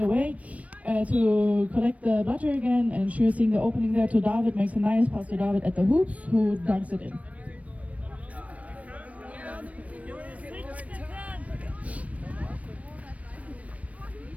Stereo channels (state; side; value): late; left; 0.066 ms